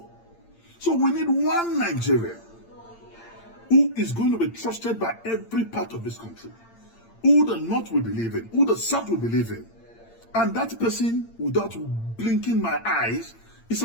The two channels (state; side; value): late; right; 8.8 ms